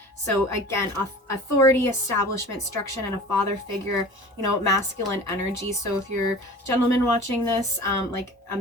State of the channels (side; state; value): both; normal; correlation 0.41